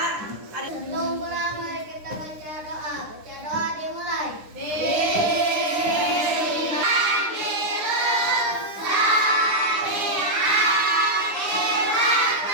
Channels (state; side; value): late; left; 9.8 ms